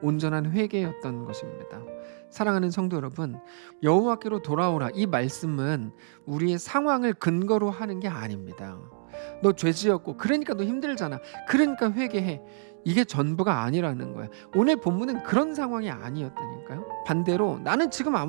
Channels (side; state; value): left; silent; digital silence